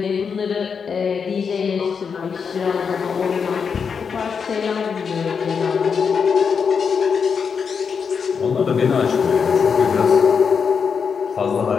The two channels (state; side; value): quieter; right; 6.1 dB